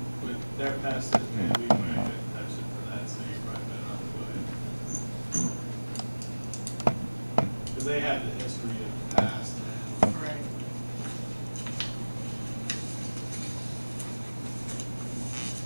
with their past history, we might have touched it for that, so you probably better not go ahead. Because they have the history of the past. Right.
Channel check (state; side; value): inverted; both; correlation -1.00